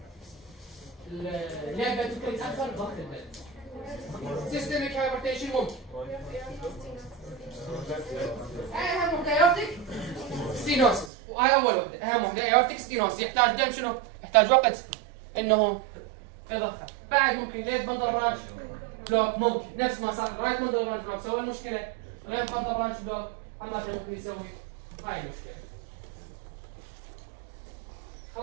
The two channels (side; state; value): left; drops out; at 11.1 s